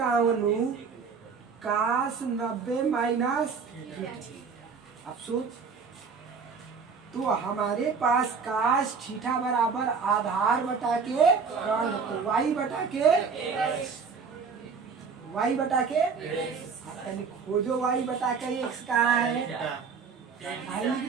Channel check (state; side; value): quieter; left; 5.5 dB